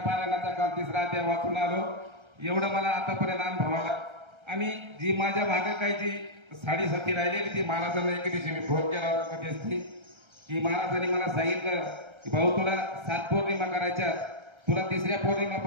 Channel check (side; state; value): left; late; 1.3 ms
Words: काल तिसरा अध्याय वाचून आलो। एवढं मला आतापर्यंत अनुभव आला। आणि जी माझ्या मागे काही जी साडेसाती राहिलेली, ती महाराजांना एक दिवशी मी फोन केला होता कधी, की महाराजांनी मला सांगितलं की भाऊ, तुला 7 पौर्णिमा करायच्या, तुला तिसऱ्या